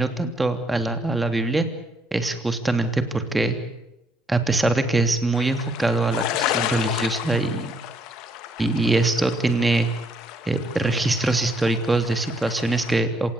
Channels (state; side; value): normal; both; correlation 0.69